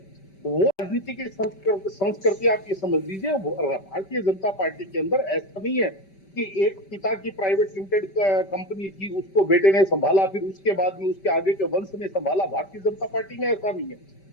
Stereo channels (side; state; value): right; late; 5.1 ms